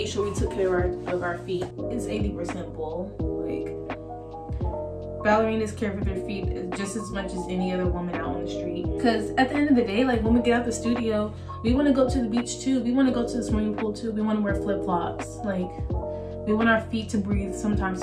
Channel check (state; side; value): identical; both; correlation 1.00